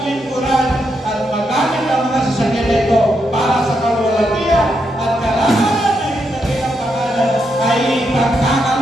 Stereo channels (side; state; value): both; normal; correlation 0.81